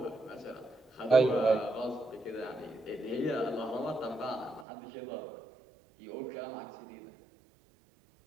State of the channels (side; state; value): left; drops out; at 4.7 s